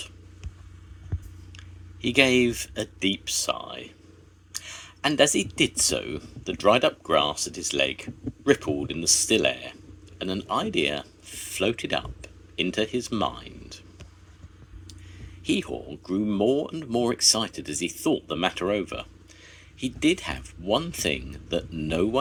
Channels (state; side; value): identical; both; correlation 1.00